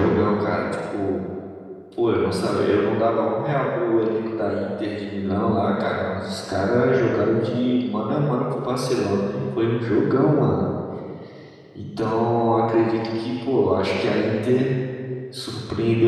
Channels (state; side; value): identical; both; correlation 1.00